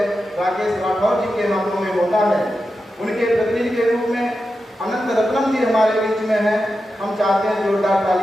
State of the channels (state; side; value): normal; both; correlation 0.90